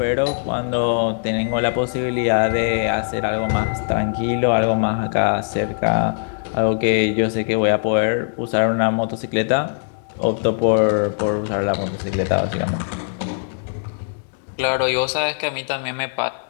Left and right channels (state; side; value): silent; right; digital silence